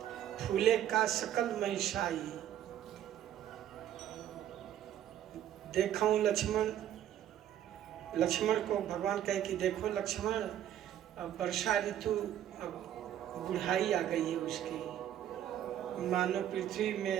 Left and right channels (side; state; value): left; quieter; 11.1 dB